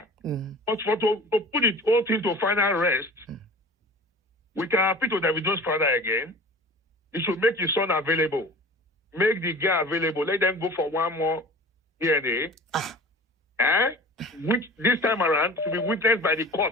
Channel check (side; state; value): both; normal; correlation 0.40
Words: put it all thing to final rest, we can appeal to Davido's father again. He should make his son available. Make the girl available. Let them go for one more DNA. Which this time around to be witnessed by the